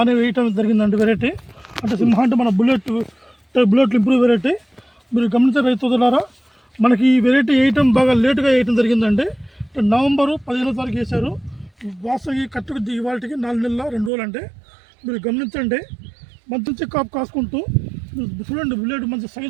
అనే వేయటం జరిగిందండి. వెరైటీ అంటే సింహ అంటే మన బుల్లెట్ ఇంప్రూవ్ వెరైటీ. మీరు గమనించే రైతులారా, మనకి ఈ వెరైటీ వేయటం బాగా లేటుగా వేయటం జరిగిందండి. నవంబరు 15వ తారీఖు వేశారు. వాస్తవ కట్టుకు ఇవాళకి 4 నెలల 2 రోజులు అంటే మీరు గమనించండి. మంచి కాపు కాసుకుంటూ చూడండి. బుల్లెట్ మంచి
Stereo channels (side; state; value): left; drops out; at 14.1 s